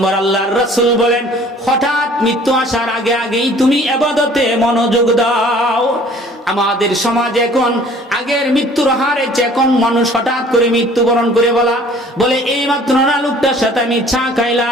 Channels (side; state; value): both; normal; correlation 0.53